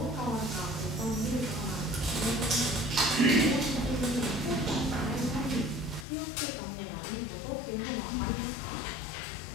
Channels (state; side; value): drops out; right; at 6.1 s